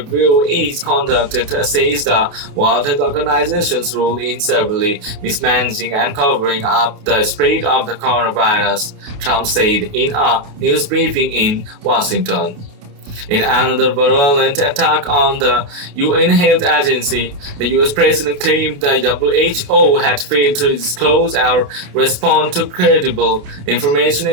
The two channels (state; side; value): late; left; 28 ms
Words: is conducted to assess the World Health Organization's role in severely mismanaging and covering up the spread of the coronavirus, Trump said in a news briefing in Washington. In another virulent attack on the UN Health Agency, the US President claimed the WHO had failed to disclose or respond to credible information